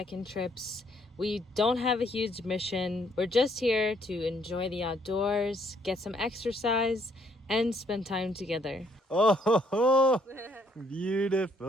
trips. We don't have a huge mission. We're just here to enjoy the outdoors, get some exercise, and spend time together. Oh,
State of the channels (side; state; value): both; normal; correlation 0.68